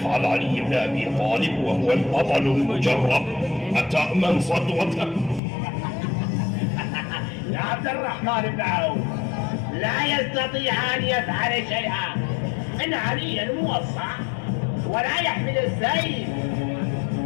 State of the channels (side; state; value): right; drops out; at 5.4 s